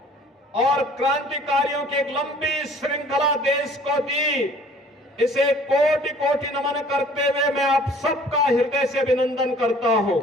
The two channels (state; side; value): normal; both; correlation 0.53